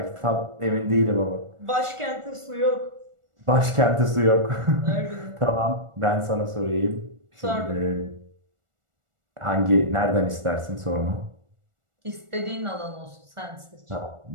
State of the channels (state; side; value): late; left; 1.4 ms